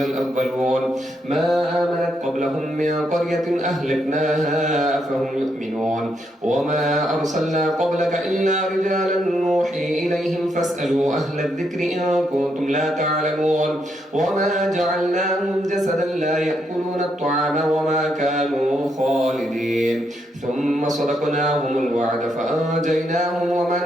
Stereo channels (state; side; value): normal; both; correlation 0.78